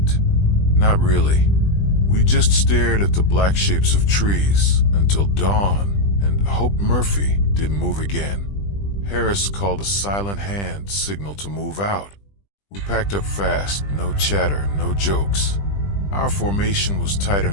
Not really. We just stared at the black shapes of trees until dawn and hoped Murphy didn't move again. Harris called a silent hand signal to move out. We packed up fast, no chatter, no jokes. Our formation was tighter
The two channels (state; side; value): late; right; 20 ms